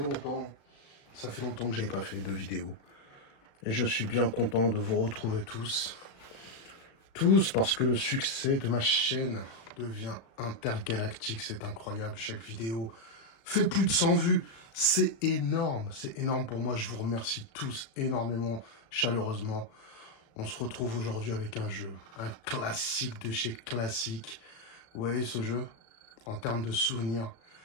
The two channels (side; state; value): right; late; 35 ms